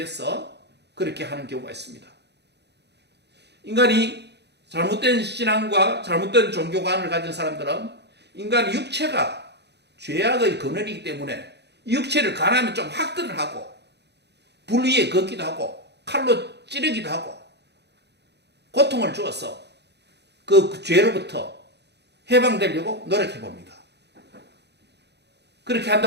그렇게 하는 경우가 있습니다. 인간이 잘못된 신앙과 잘못된 종교관을 가진 사람들은 인간의 육체가 죄악의 근원이기 때문에 이 육체를 가난하면 좀 학대를 하고 불 위에 걷기도 하고 칼로 찌르기도 하고 고통을 주어서 그 죄로부터 해방되려고 노력해 봅니다. 그렇게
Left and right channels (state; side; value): late; left; 0.49 ms